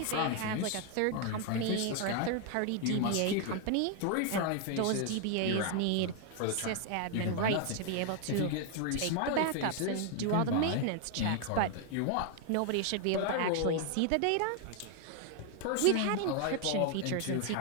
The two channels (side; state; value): both; different; correlation 0.00